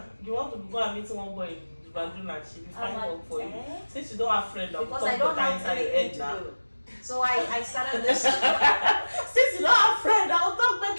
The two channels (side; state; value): both; inverted; correlation -1.00